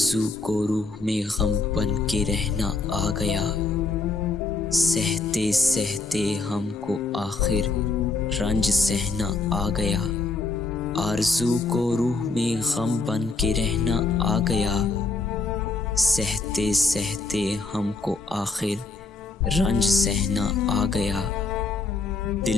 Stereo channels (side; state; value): right; quieter; 3.9 dB